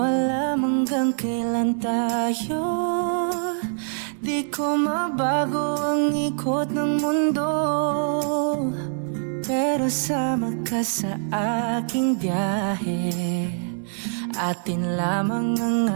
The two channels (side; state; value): left; silent; digital silence